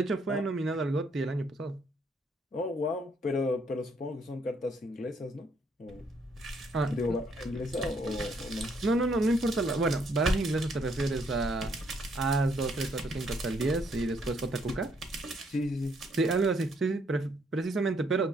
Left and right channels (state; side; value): normal; both; correlation 0.70